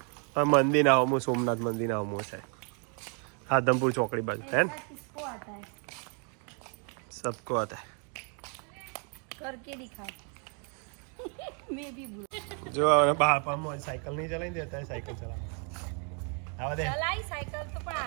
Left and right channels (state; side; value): quieter; left; 39.2 dB